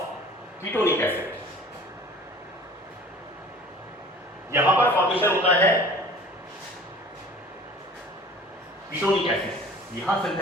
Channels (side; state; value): both; normal; correlation 0.46